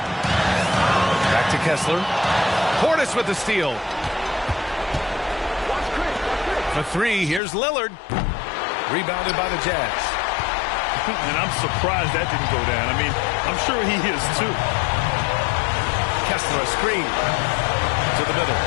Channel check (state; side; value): drops out; right; at 7.4 s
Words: Back to Kessler. Portis with the steal. For three, here's Lillard. Rebounded by the Jazz. And I'm surprised that didn't go down. I mean, I'm sure he is too. Kessler, a screen. To the middle.